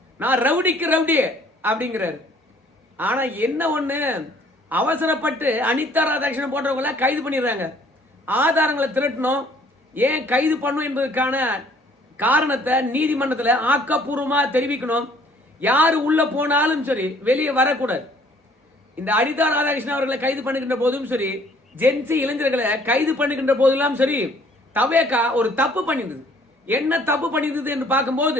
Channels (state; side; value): normal; both; correlation 0.59